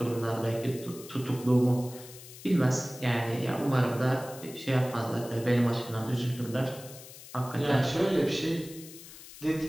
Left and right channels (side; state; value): left; noise; hiss, 16 dB below the sound